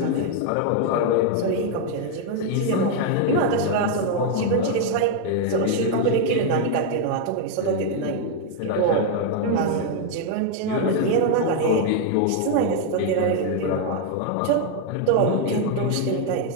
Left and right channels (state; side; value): different; both; correlation 0.00